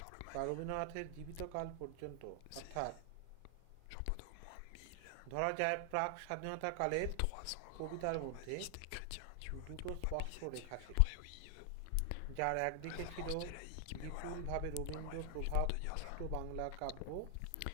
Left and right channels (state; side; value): different; both; correlation 0.00